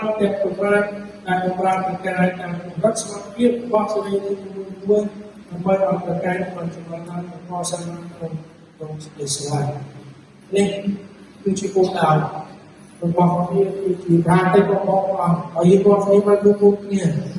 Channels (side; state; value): both; identical; correlation 1.00